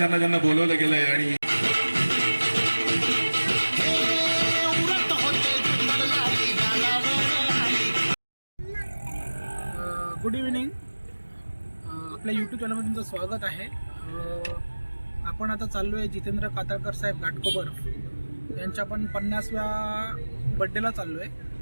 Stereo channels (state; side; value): inverted; both; correlation -1.00